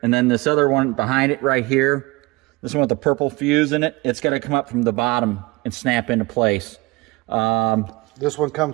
and then this other one behind it right here. This one with the purple fuse in it. It's got to come up from the bottom and snap into place. This one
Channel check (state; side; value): quieter; left; 23.6 dB